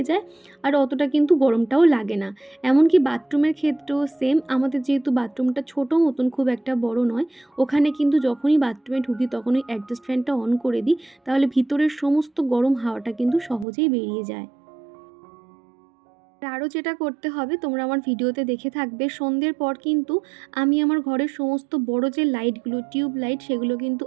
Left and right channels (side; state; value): left; drops out; at 13.7 s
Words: যায়, আর অতটা কিন্তু গরমটাও লাগে না। এমনকি বাথরুমের ক্ষেত্রেও সেম, আমাদের যেহেতু বাথরুমটা ছোটো মতন, খুব একটা বড় নয়, ওখানে কিন্তু যখনই বাথরুমে ঢুকি তখনই অ্যাডজাস্ট ফ্যানটা অন করে দিই, তাহলে ভিতরের সমস্ত গরম হাওয়াটা কিন্তু সহজেই বেরিয়ে যায়। আরও যেটা করতে হবে, তোমরা আমার ভিডিওতে দেখে থাকবে, সন্ধ্যের পর কিন্তু আমি আমার ঘরের সমস্ত বড় যে লাইটগুলো, টিউব লাইট, সেগুলো কিন্তু